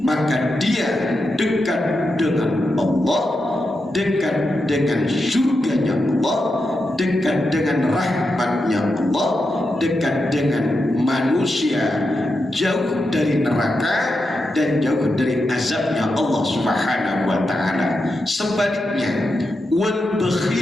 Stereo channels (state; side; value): normal; both; correlation 0.87